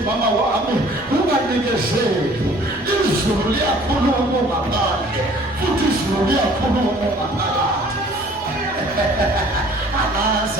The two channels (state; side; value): normal; both; correlation 0.53